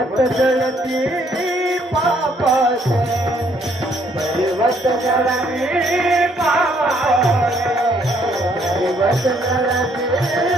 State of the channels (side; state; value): both; normal; correlation 0.67